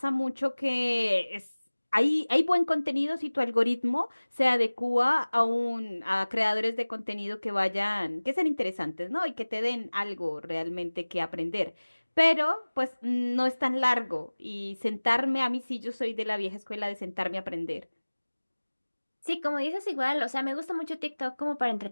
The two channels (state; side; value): inverted; both; correlation -1.00